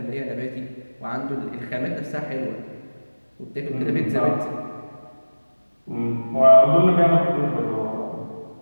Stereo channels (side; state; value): both; inverted; correlation -1.00